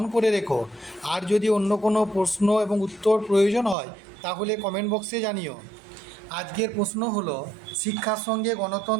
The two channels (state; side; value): drops out; left; at 3.8 s